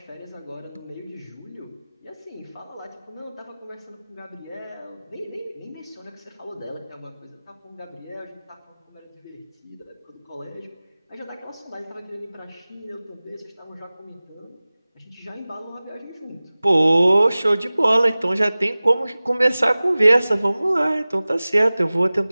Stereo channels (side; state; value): both; inverted; correlation -0.98